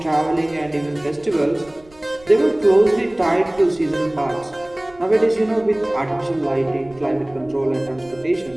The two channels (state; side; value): noise; right; rumble, 26 dB below the sound